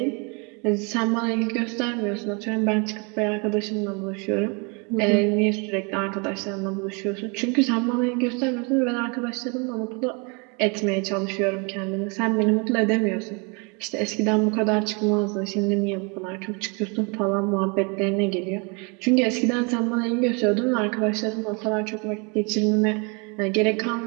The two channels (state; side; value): quieter; left; 32.4 dB